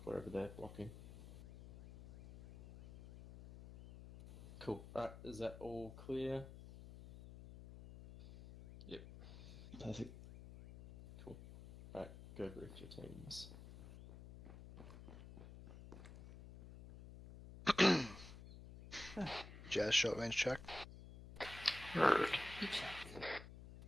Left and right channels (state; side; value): noise; left; hum, 14 dB below the sound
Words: wherever they're blocking. Cool. Alright, is that all clear? Yep. Perfect. Cool. Alright, go brief your teams. Jazz short range check.